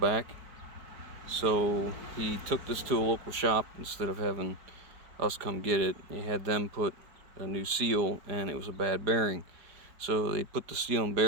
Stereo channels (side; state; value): left; late; 5.0 ms